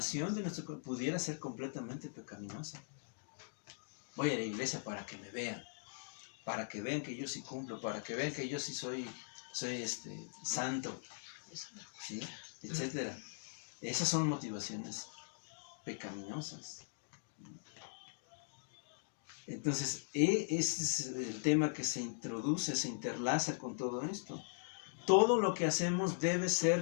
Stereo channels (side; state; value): right; silent; digital silence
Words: de nuestro pudiera ser completamente pecaminosa. Voy a la iglesia para que me vean, para que vean que yo sí cumplo, para que vean que yo sí soy santo, ¿sí? Etcétera. Esas son motivaciones pecaminosas. Entonces, ese es el tema que se introduce, se interlaza con todo esto. Todo lo que hacemos debe